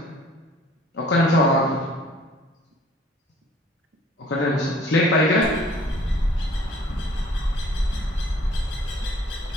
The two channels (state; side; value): normal; both; correlation 0.54